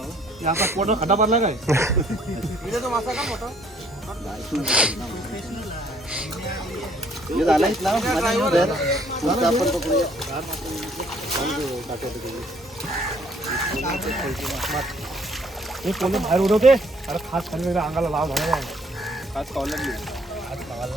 खड्डा पडला काय? तो मासा का मोठा झाला इथला आपण पकडूया. हे पोले बाहेर उडवते. अरे खास खाली अंगाला लाव झाला. खास खावला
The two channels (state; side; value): normal; both; correlation 0.62